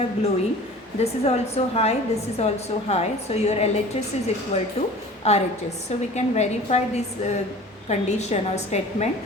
glowing, this is also high, this is also high, so your LHS is equal to RHS. So we can verify this condition or statement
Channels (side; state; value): both; normal; correlation 0.42